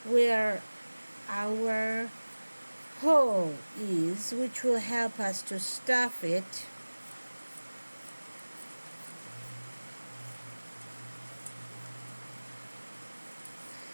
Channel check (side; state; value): both; inverted; correlation -1.00